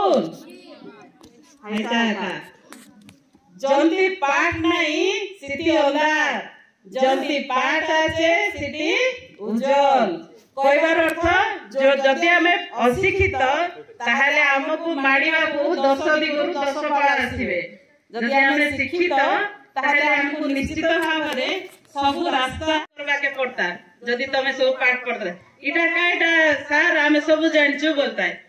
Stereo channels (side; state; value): both; identical; correlation 1.00